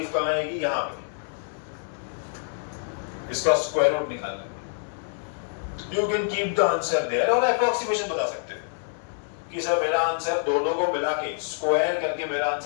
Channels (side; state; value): right; silent; digital silence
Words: कहाँ आएगी? यहाँ पे इसका स्क्वायर रूट निकालना है। You can keep the answer there और अप्रोक्सीमेशन बता सकते हो कि सर मेरा आंसर दोनों को मिला के स्क्वायर करके मेरा